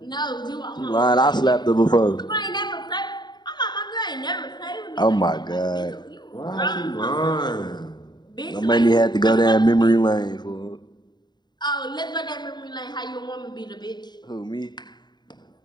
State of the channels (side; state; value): right; late; 0.21 ms